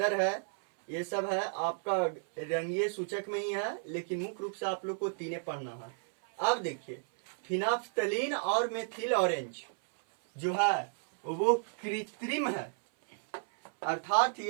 है, ये सब है आपका रंगीय सूचक में ही है, लेकिन मुख्य रूप से आप लोग को 3 पढ़ना है। अब देखिए, फिनाफ्थलीन और मेथिल ऑरेंज जो है वो कृत्रिम है, अर्थात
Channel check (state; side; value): silent; left; 56 dB below the other